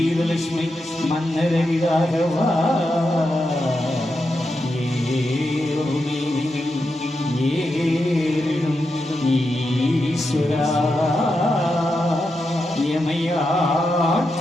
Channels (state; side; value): normal; both; correlation 0.87